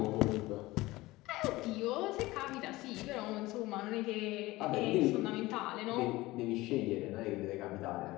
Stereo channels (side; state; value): right; quieter; 19.3 dB